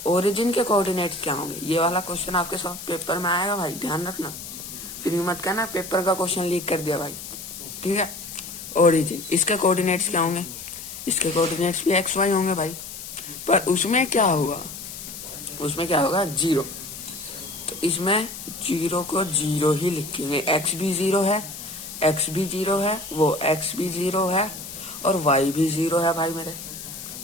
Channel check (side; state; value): left; noise; hiss, 11 dB below the sound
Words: ओरिजिन के कोऑर्डिनेट्स क्या होंगे, ये वाला क्वेश्चन आपके सब पेपर में आएगा भाई, ध्यान रखना, फिर मत कहना पेपर का क्वेश्चन लीक कर दिया भाई, ठीक है। ओरिजिन, इसके कोऑर्डिनेट्स क्या होंगे, इसके कोऑर्डिनेट्स भी एक्स वाई होंगे भाई, पर उसमें क्या होगा, उसमें क्या होगा 0, तो इसमें 0 को 0 ही लिखेंगे। एक्स भी 0 है, एक्स भी 0 है, वो एक्स भी 0 है और वाई भी 0 है भाई, मेरे